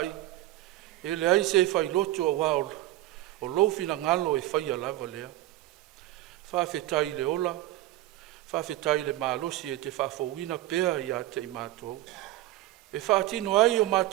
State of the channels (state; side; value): quieter; left; 15.8 dB